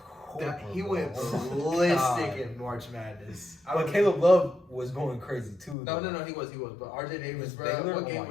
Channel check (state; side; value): drops out; right; at 5.8 s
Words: he went ballistic in March Madness. But Caleb Love was going crazy too. No, he was. But RJ Davis, bro, Baylor? what game